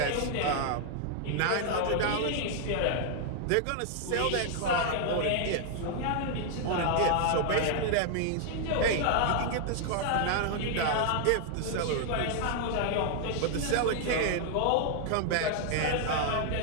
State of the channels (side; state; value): both; different; correlation 0.00